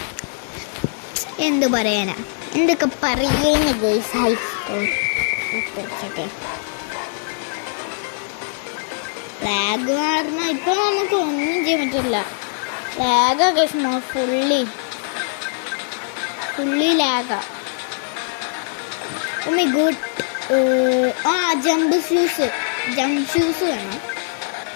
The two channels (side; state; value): right; silent; digital silence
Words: എന്ത് പറയാനാ, എന്തൊക്കെ പറയുന്ന ഗൈസ്. ഹൈ സ്കോർ ലാഗ് കാരണം ഇപ്പം നമുക്ക് ഒന്നും ചെയ്യാൻ പറ്റില്ല. ലാഗൊക്കെ ഫുള്ളി ലാഗാ. Oh my god. Jump shoes വേണം.